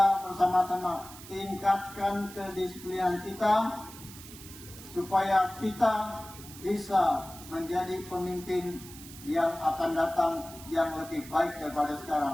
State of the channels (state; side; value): noise; right; hiss, 16 dB below the sound